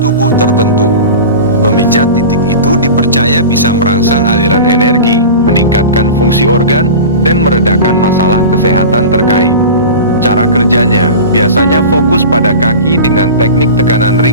tubuh tertentu. Memijat titik itu dipercaya bisa merangsang aliran energi, meningkatkan fungsi organ, dan meredakan masalah kesehatan terkait. Cara kerjanya biasanya fokus pada kaki dengan teknik tekanan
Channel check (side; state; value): both; inverted; correlation -0.32